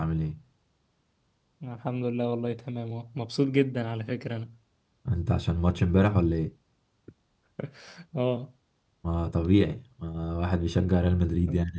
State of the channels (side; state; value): both; identical; correlation 1.00